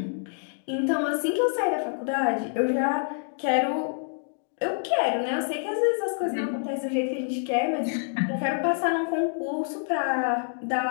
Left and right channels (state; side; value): silent; right; digital silence